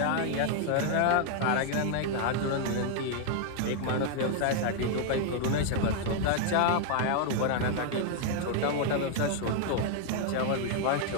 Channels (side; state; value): both; different; correlation 0.00